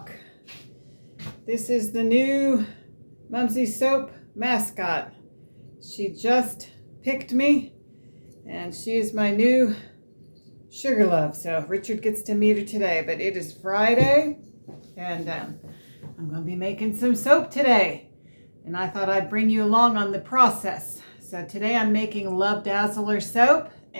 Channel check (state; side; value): inverted; both; correlation -1.00